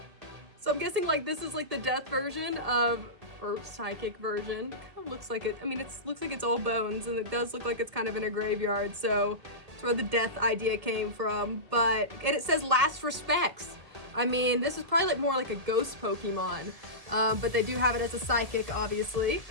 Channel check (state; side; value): late; left; 1.9 ms